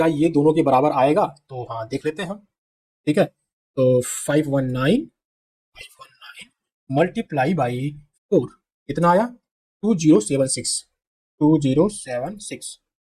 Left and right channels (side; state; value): both; identical; correlation 1.00